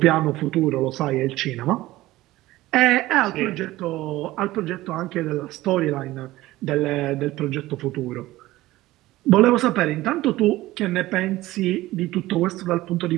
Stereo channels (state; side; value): quieter; left; 17.2 dB